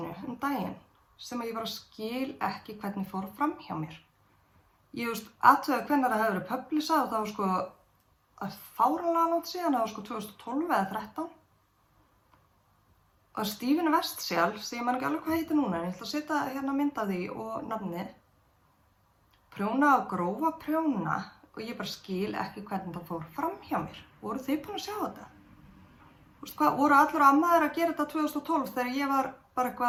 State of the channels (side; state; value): both; identical; correlation 1.00